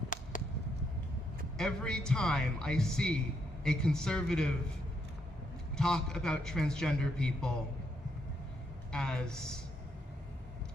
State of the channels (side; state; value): both; normal; correlation 0.77